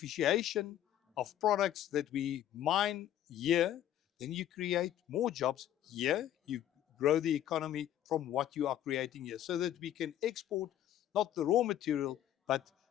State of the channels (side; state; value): right; quieter; 11.6 dB